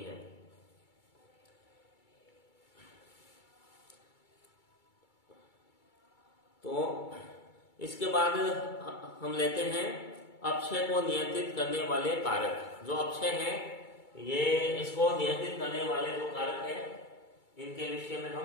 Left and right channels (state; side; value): late; right; 2.3 ms